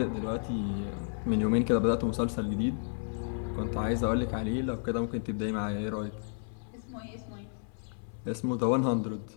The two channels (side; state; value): right; silent; 57 dB below the other